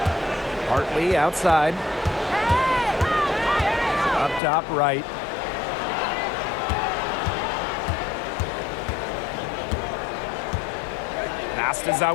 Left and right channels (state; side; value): drops out; right; at 4.4 s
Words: Hartley outside. Up top right. Pass to